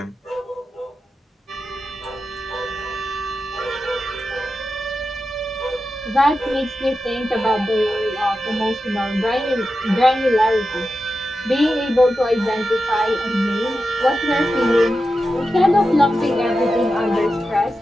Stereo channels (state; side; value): normal; both; correlation 0.91